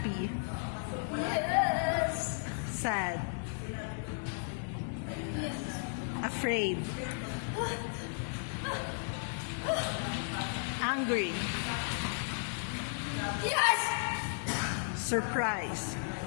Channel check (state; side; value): silent; right; 55 dB below the other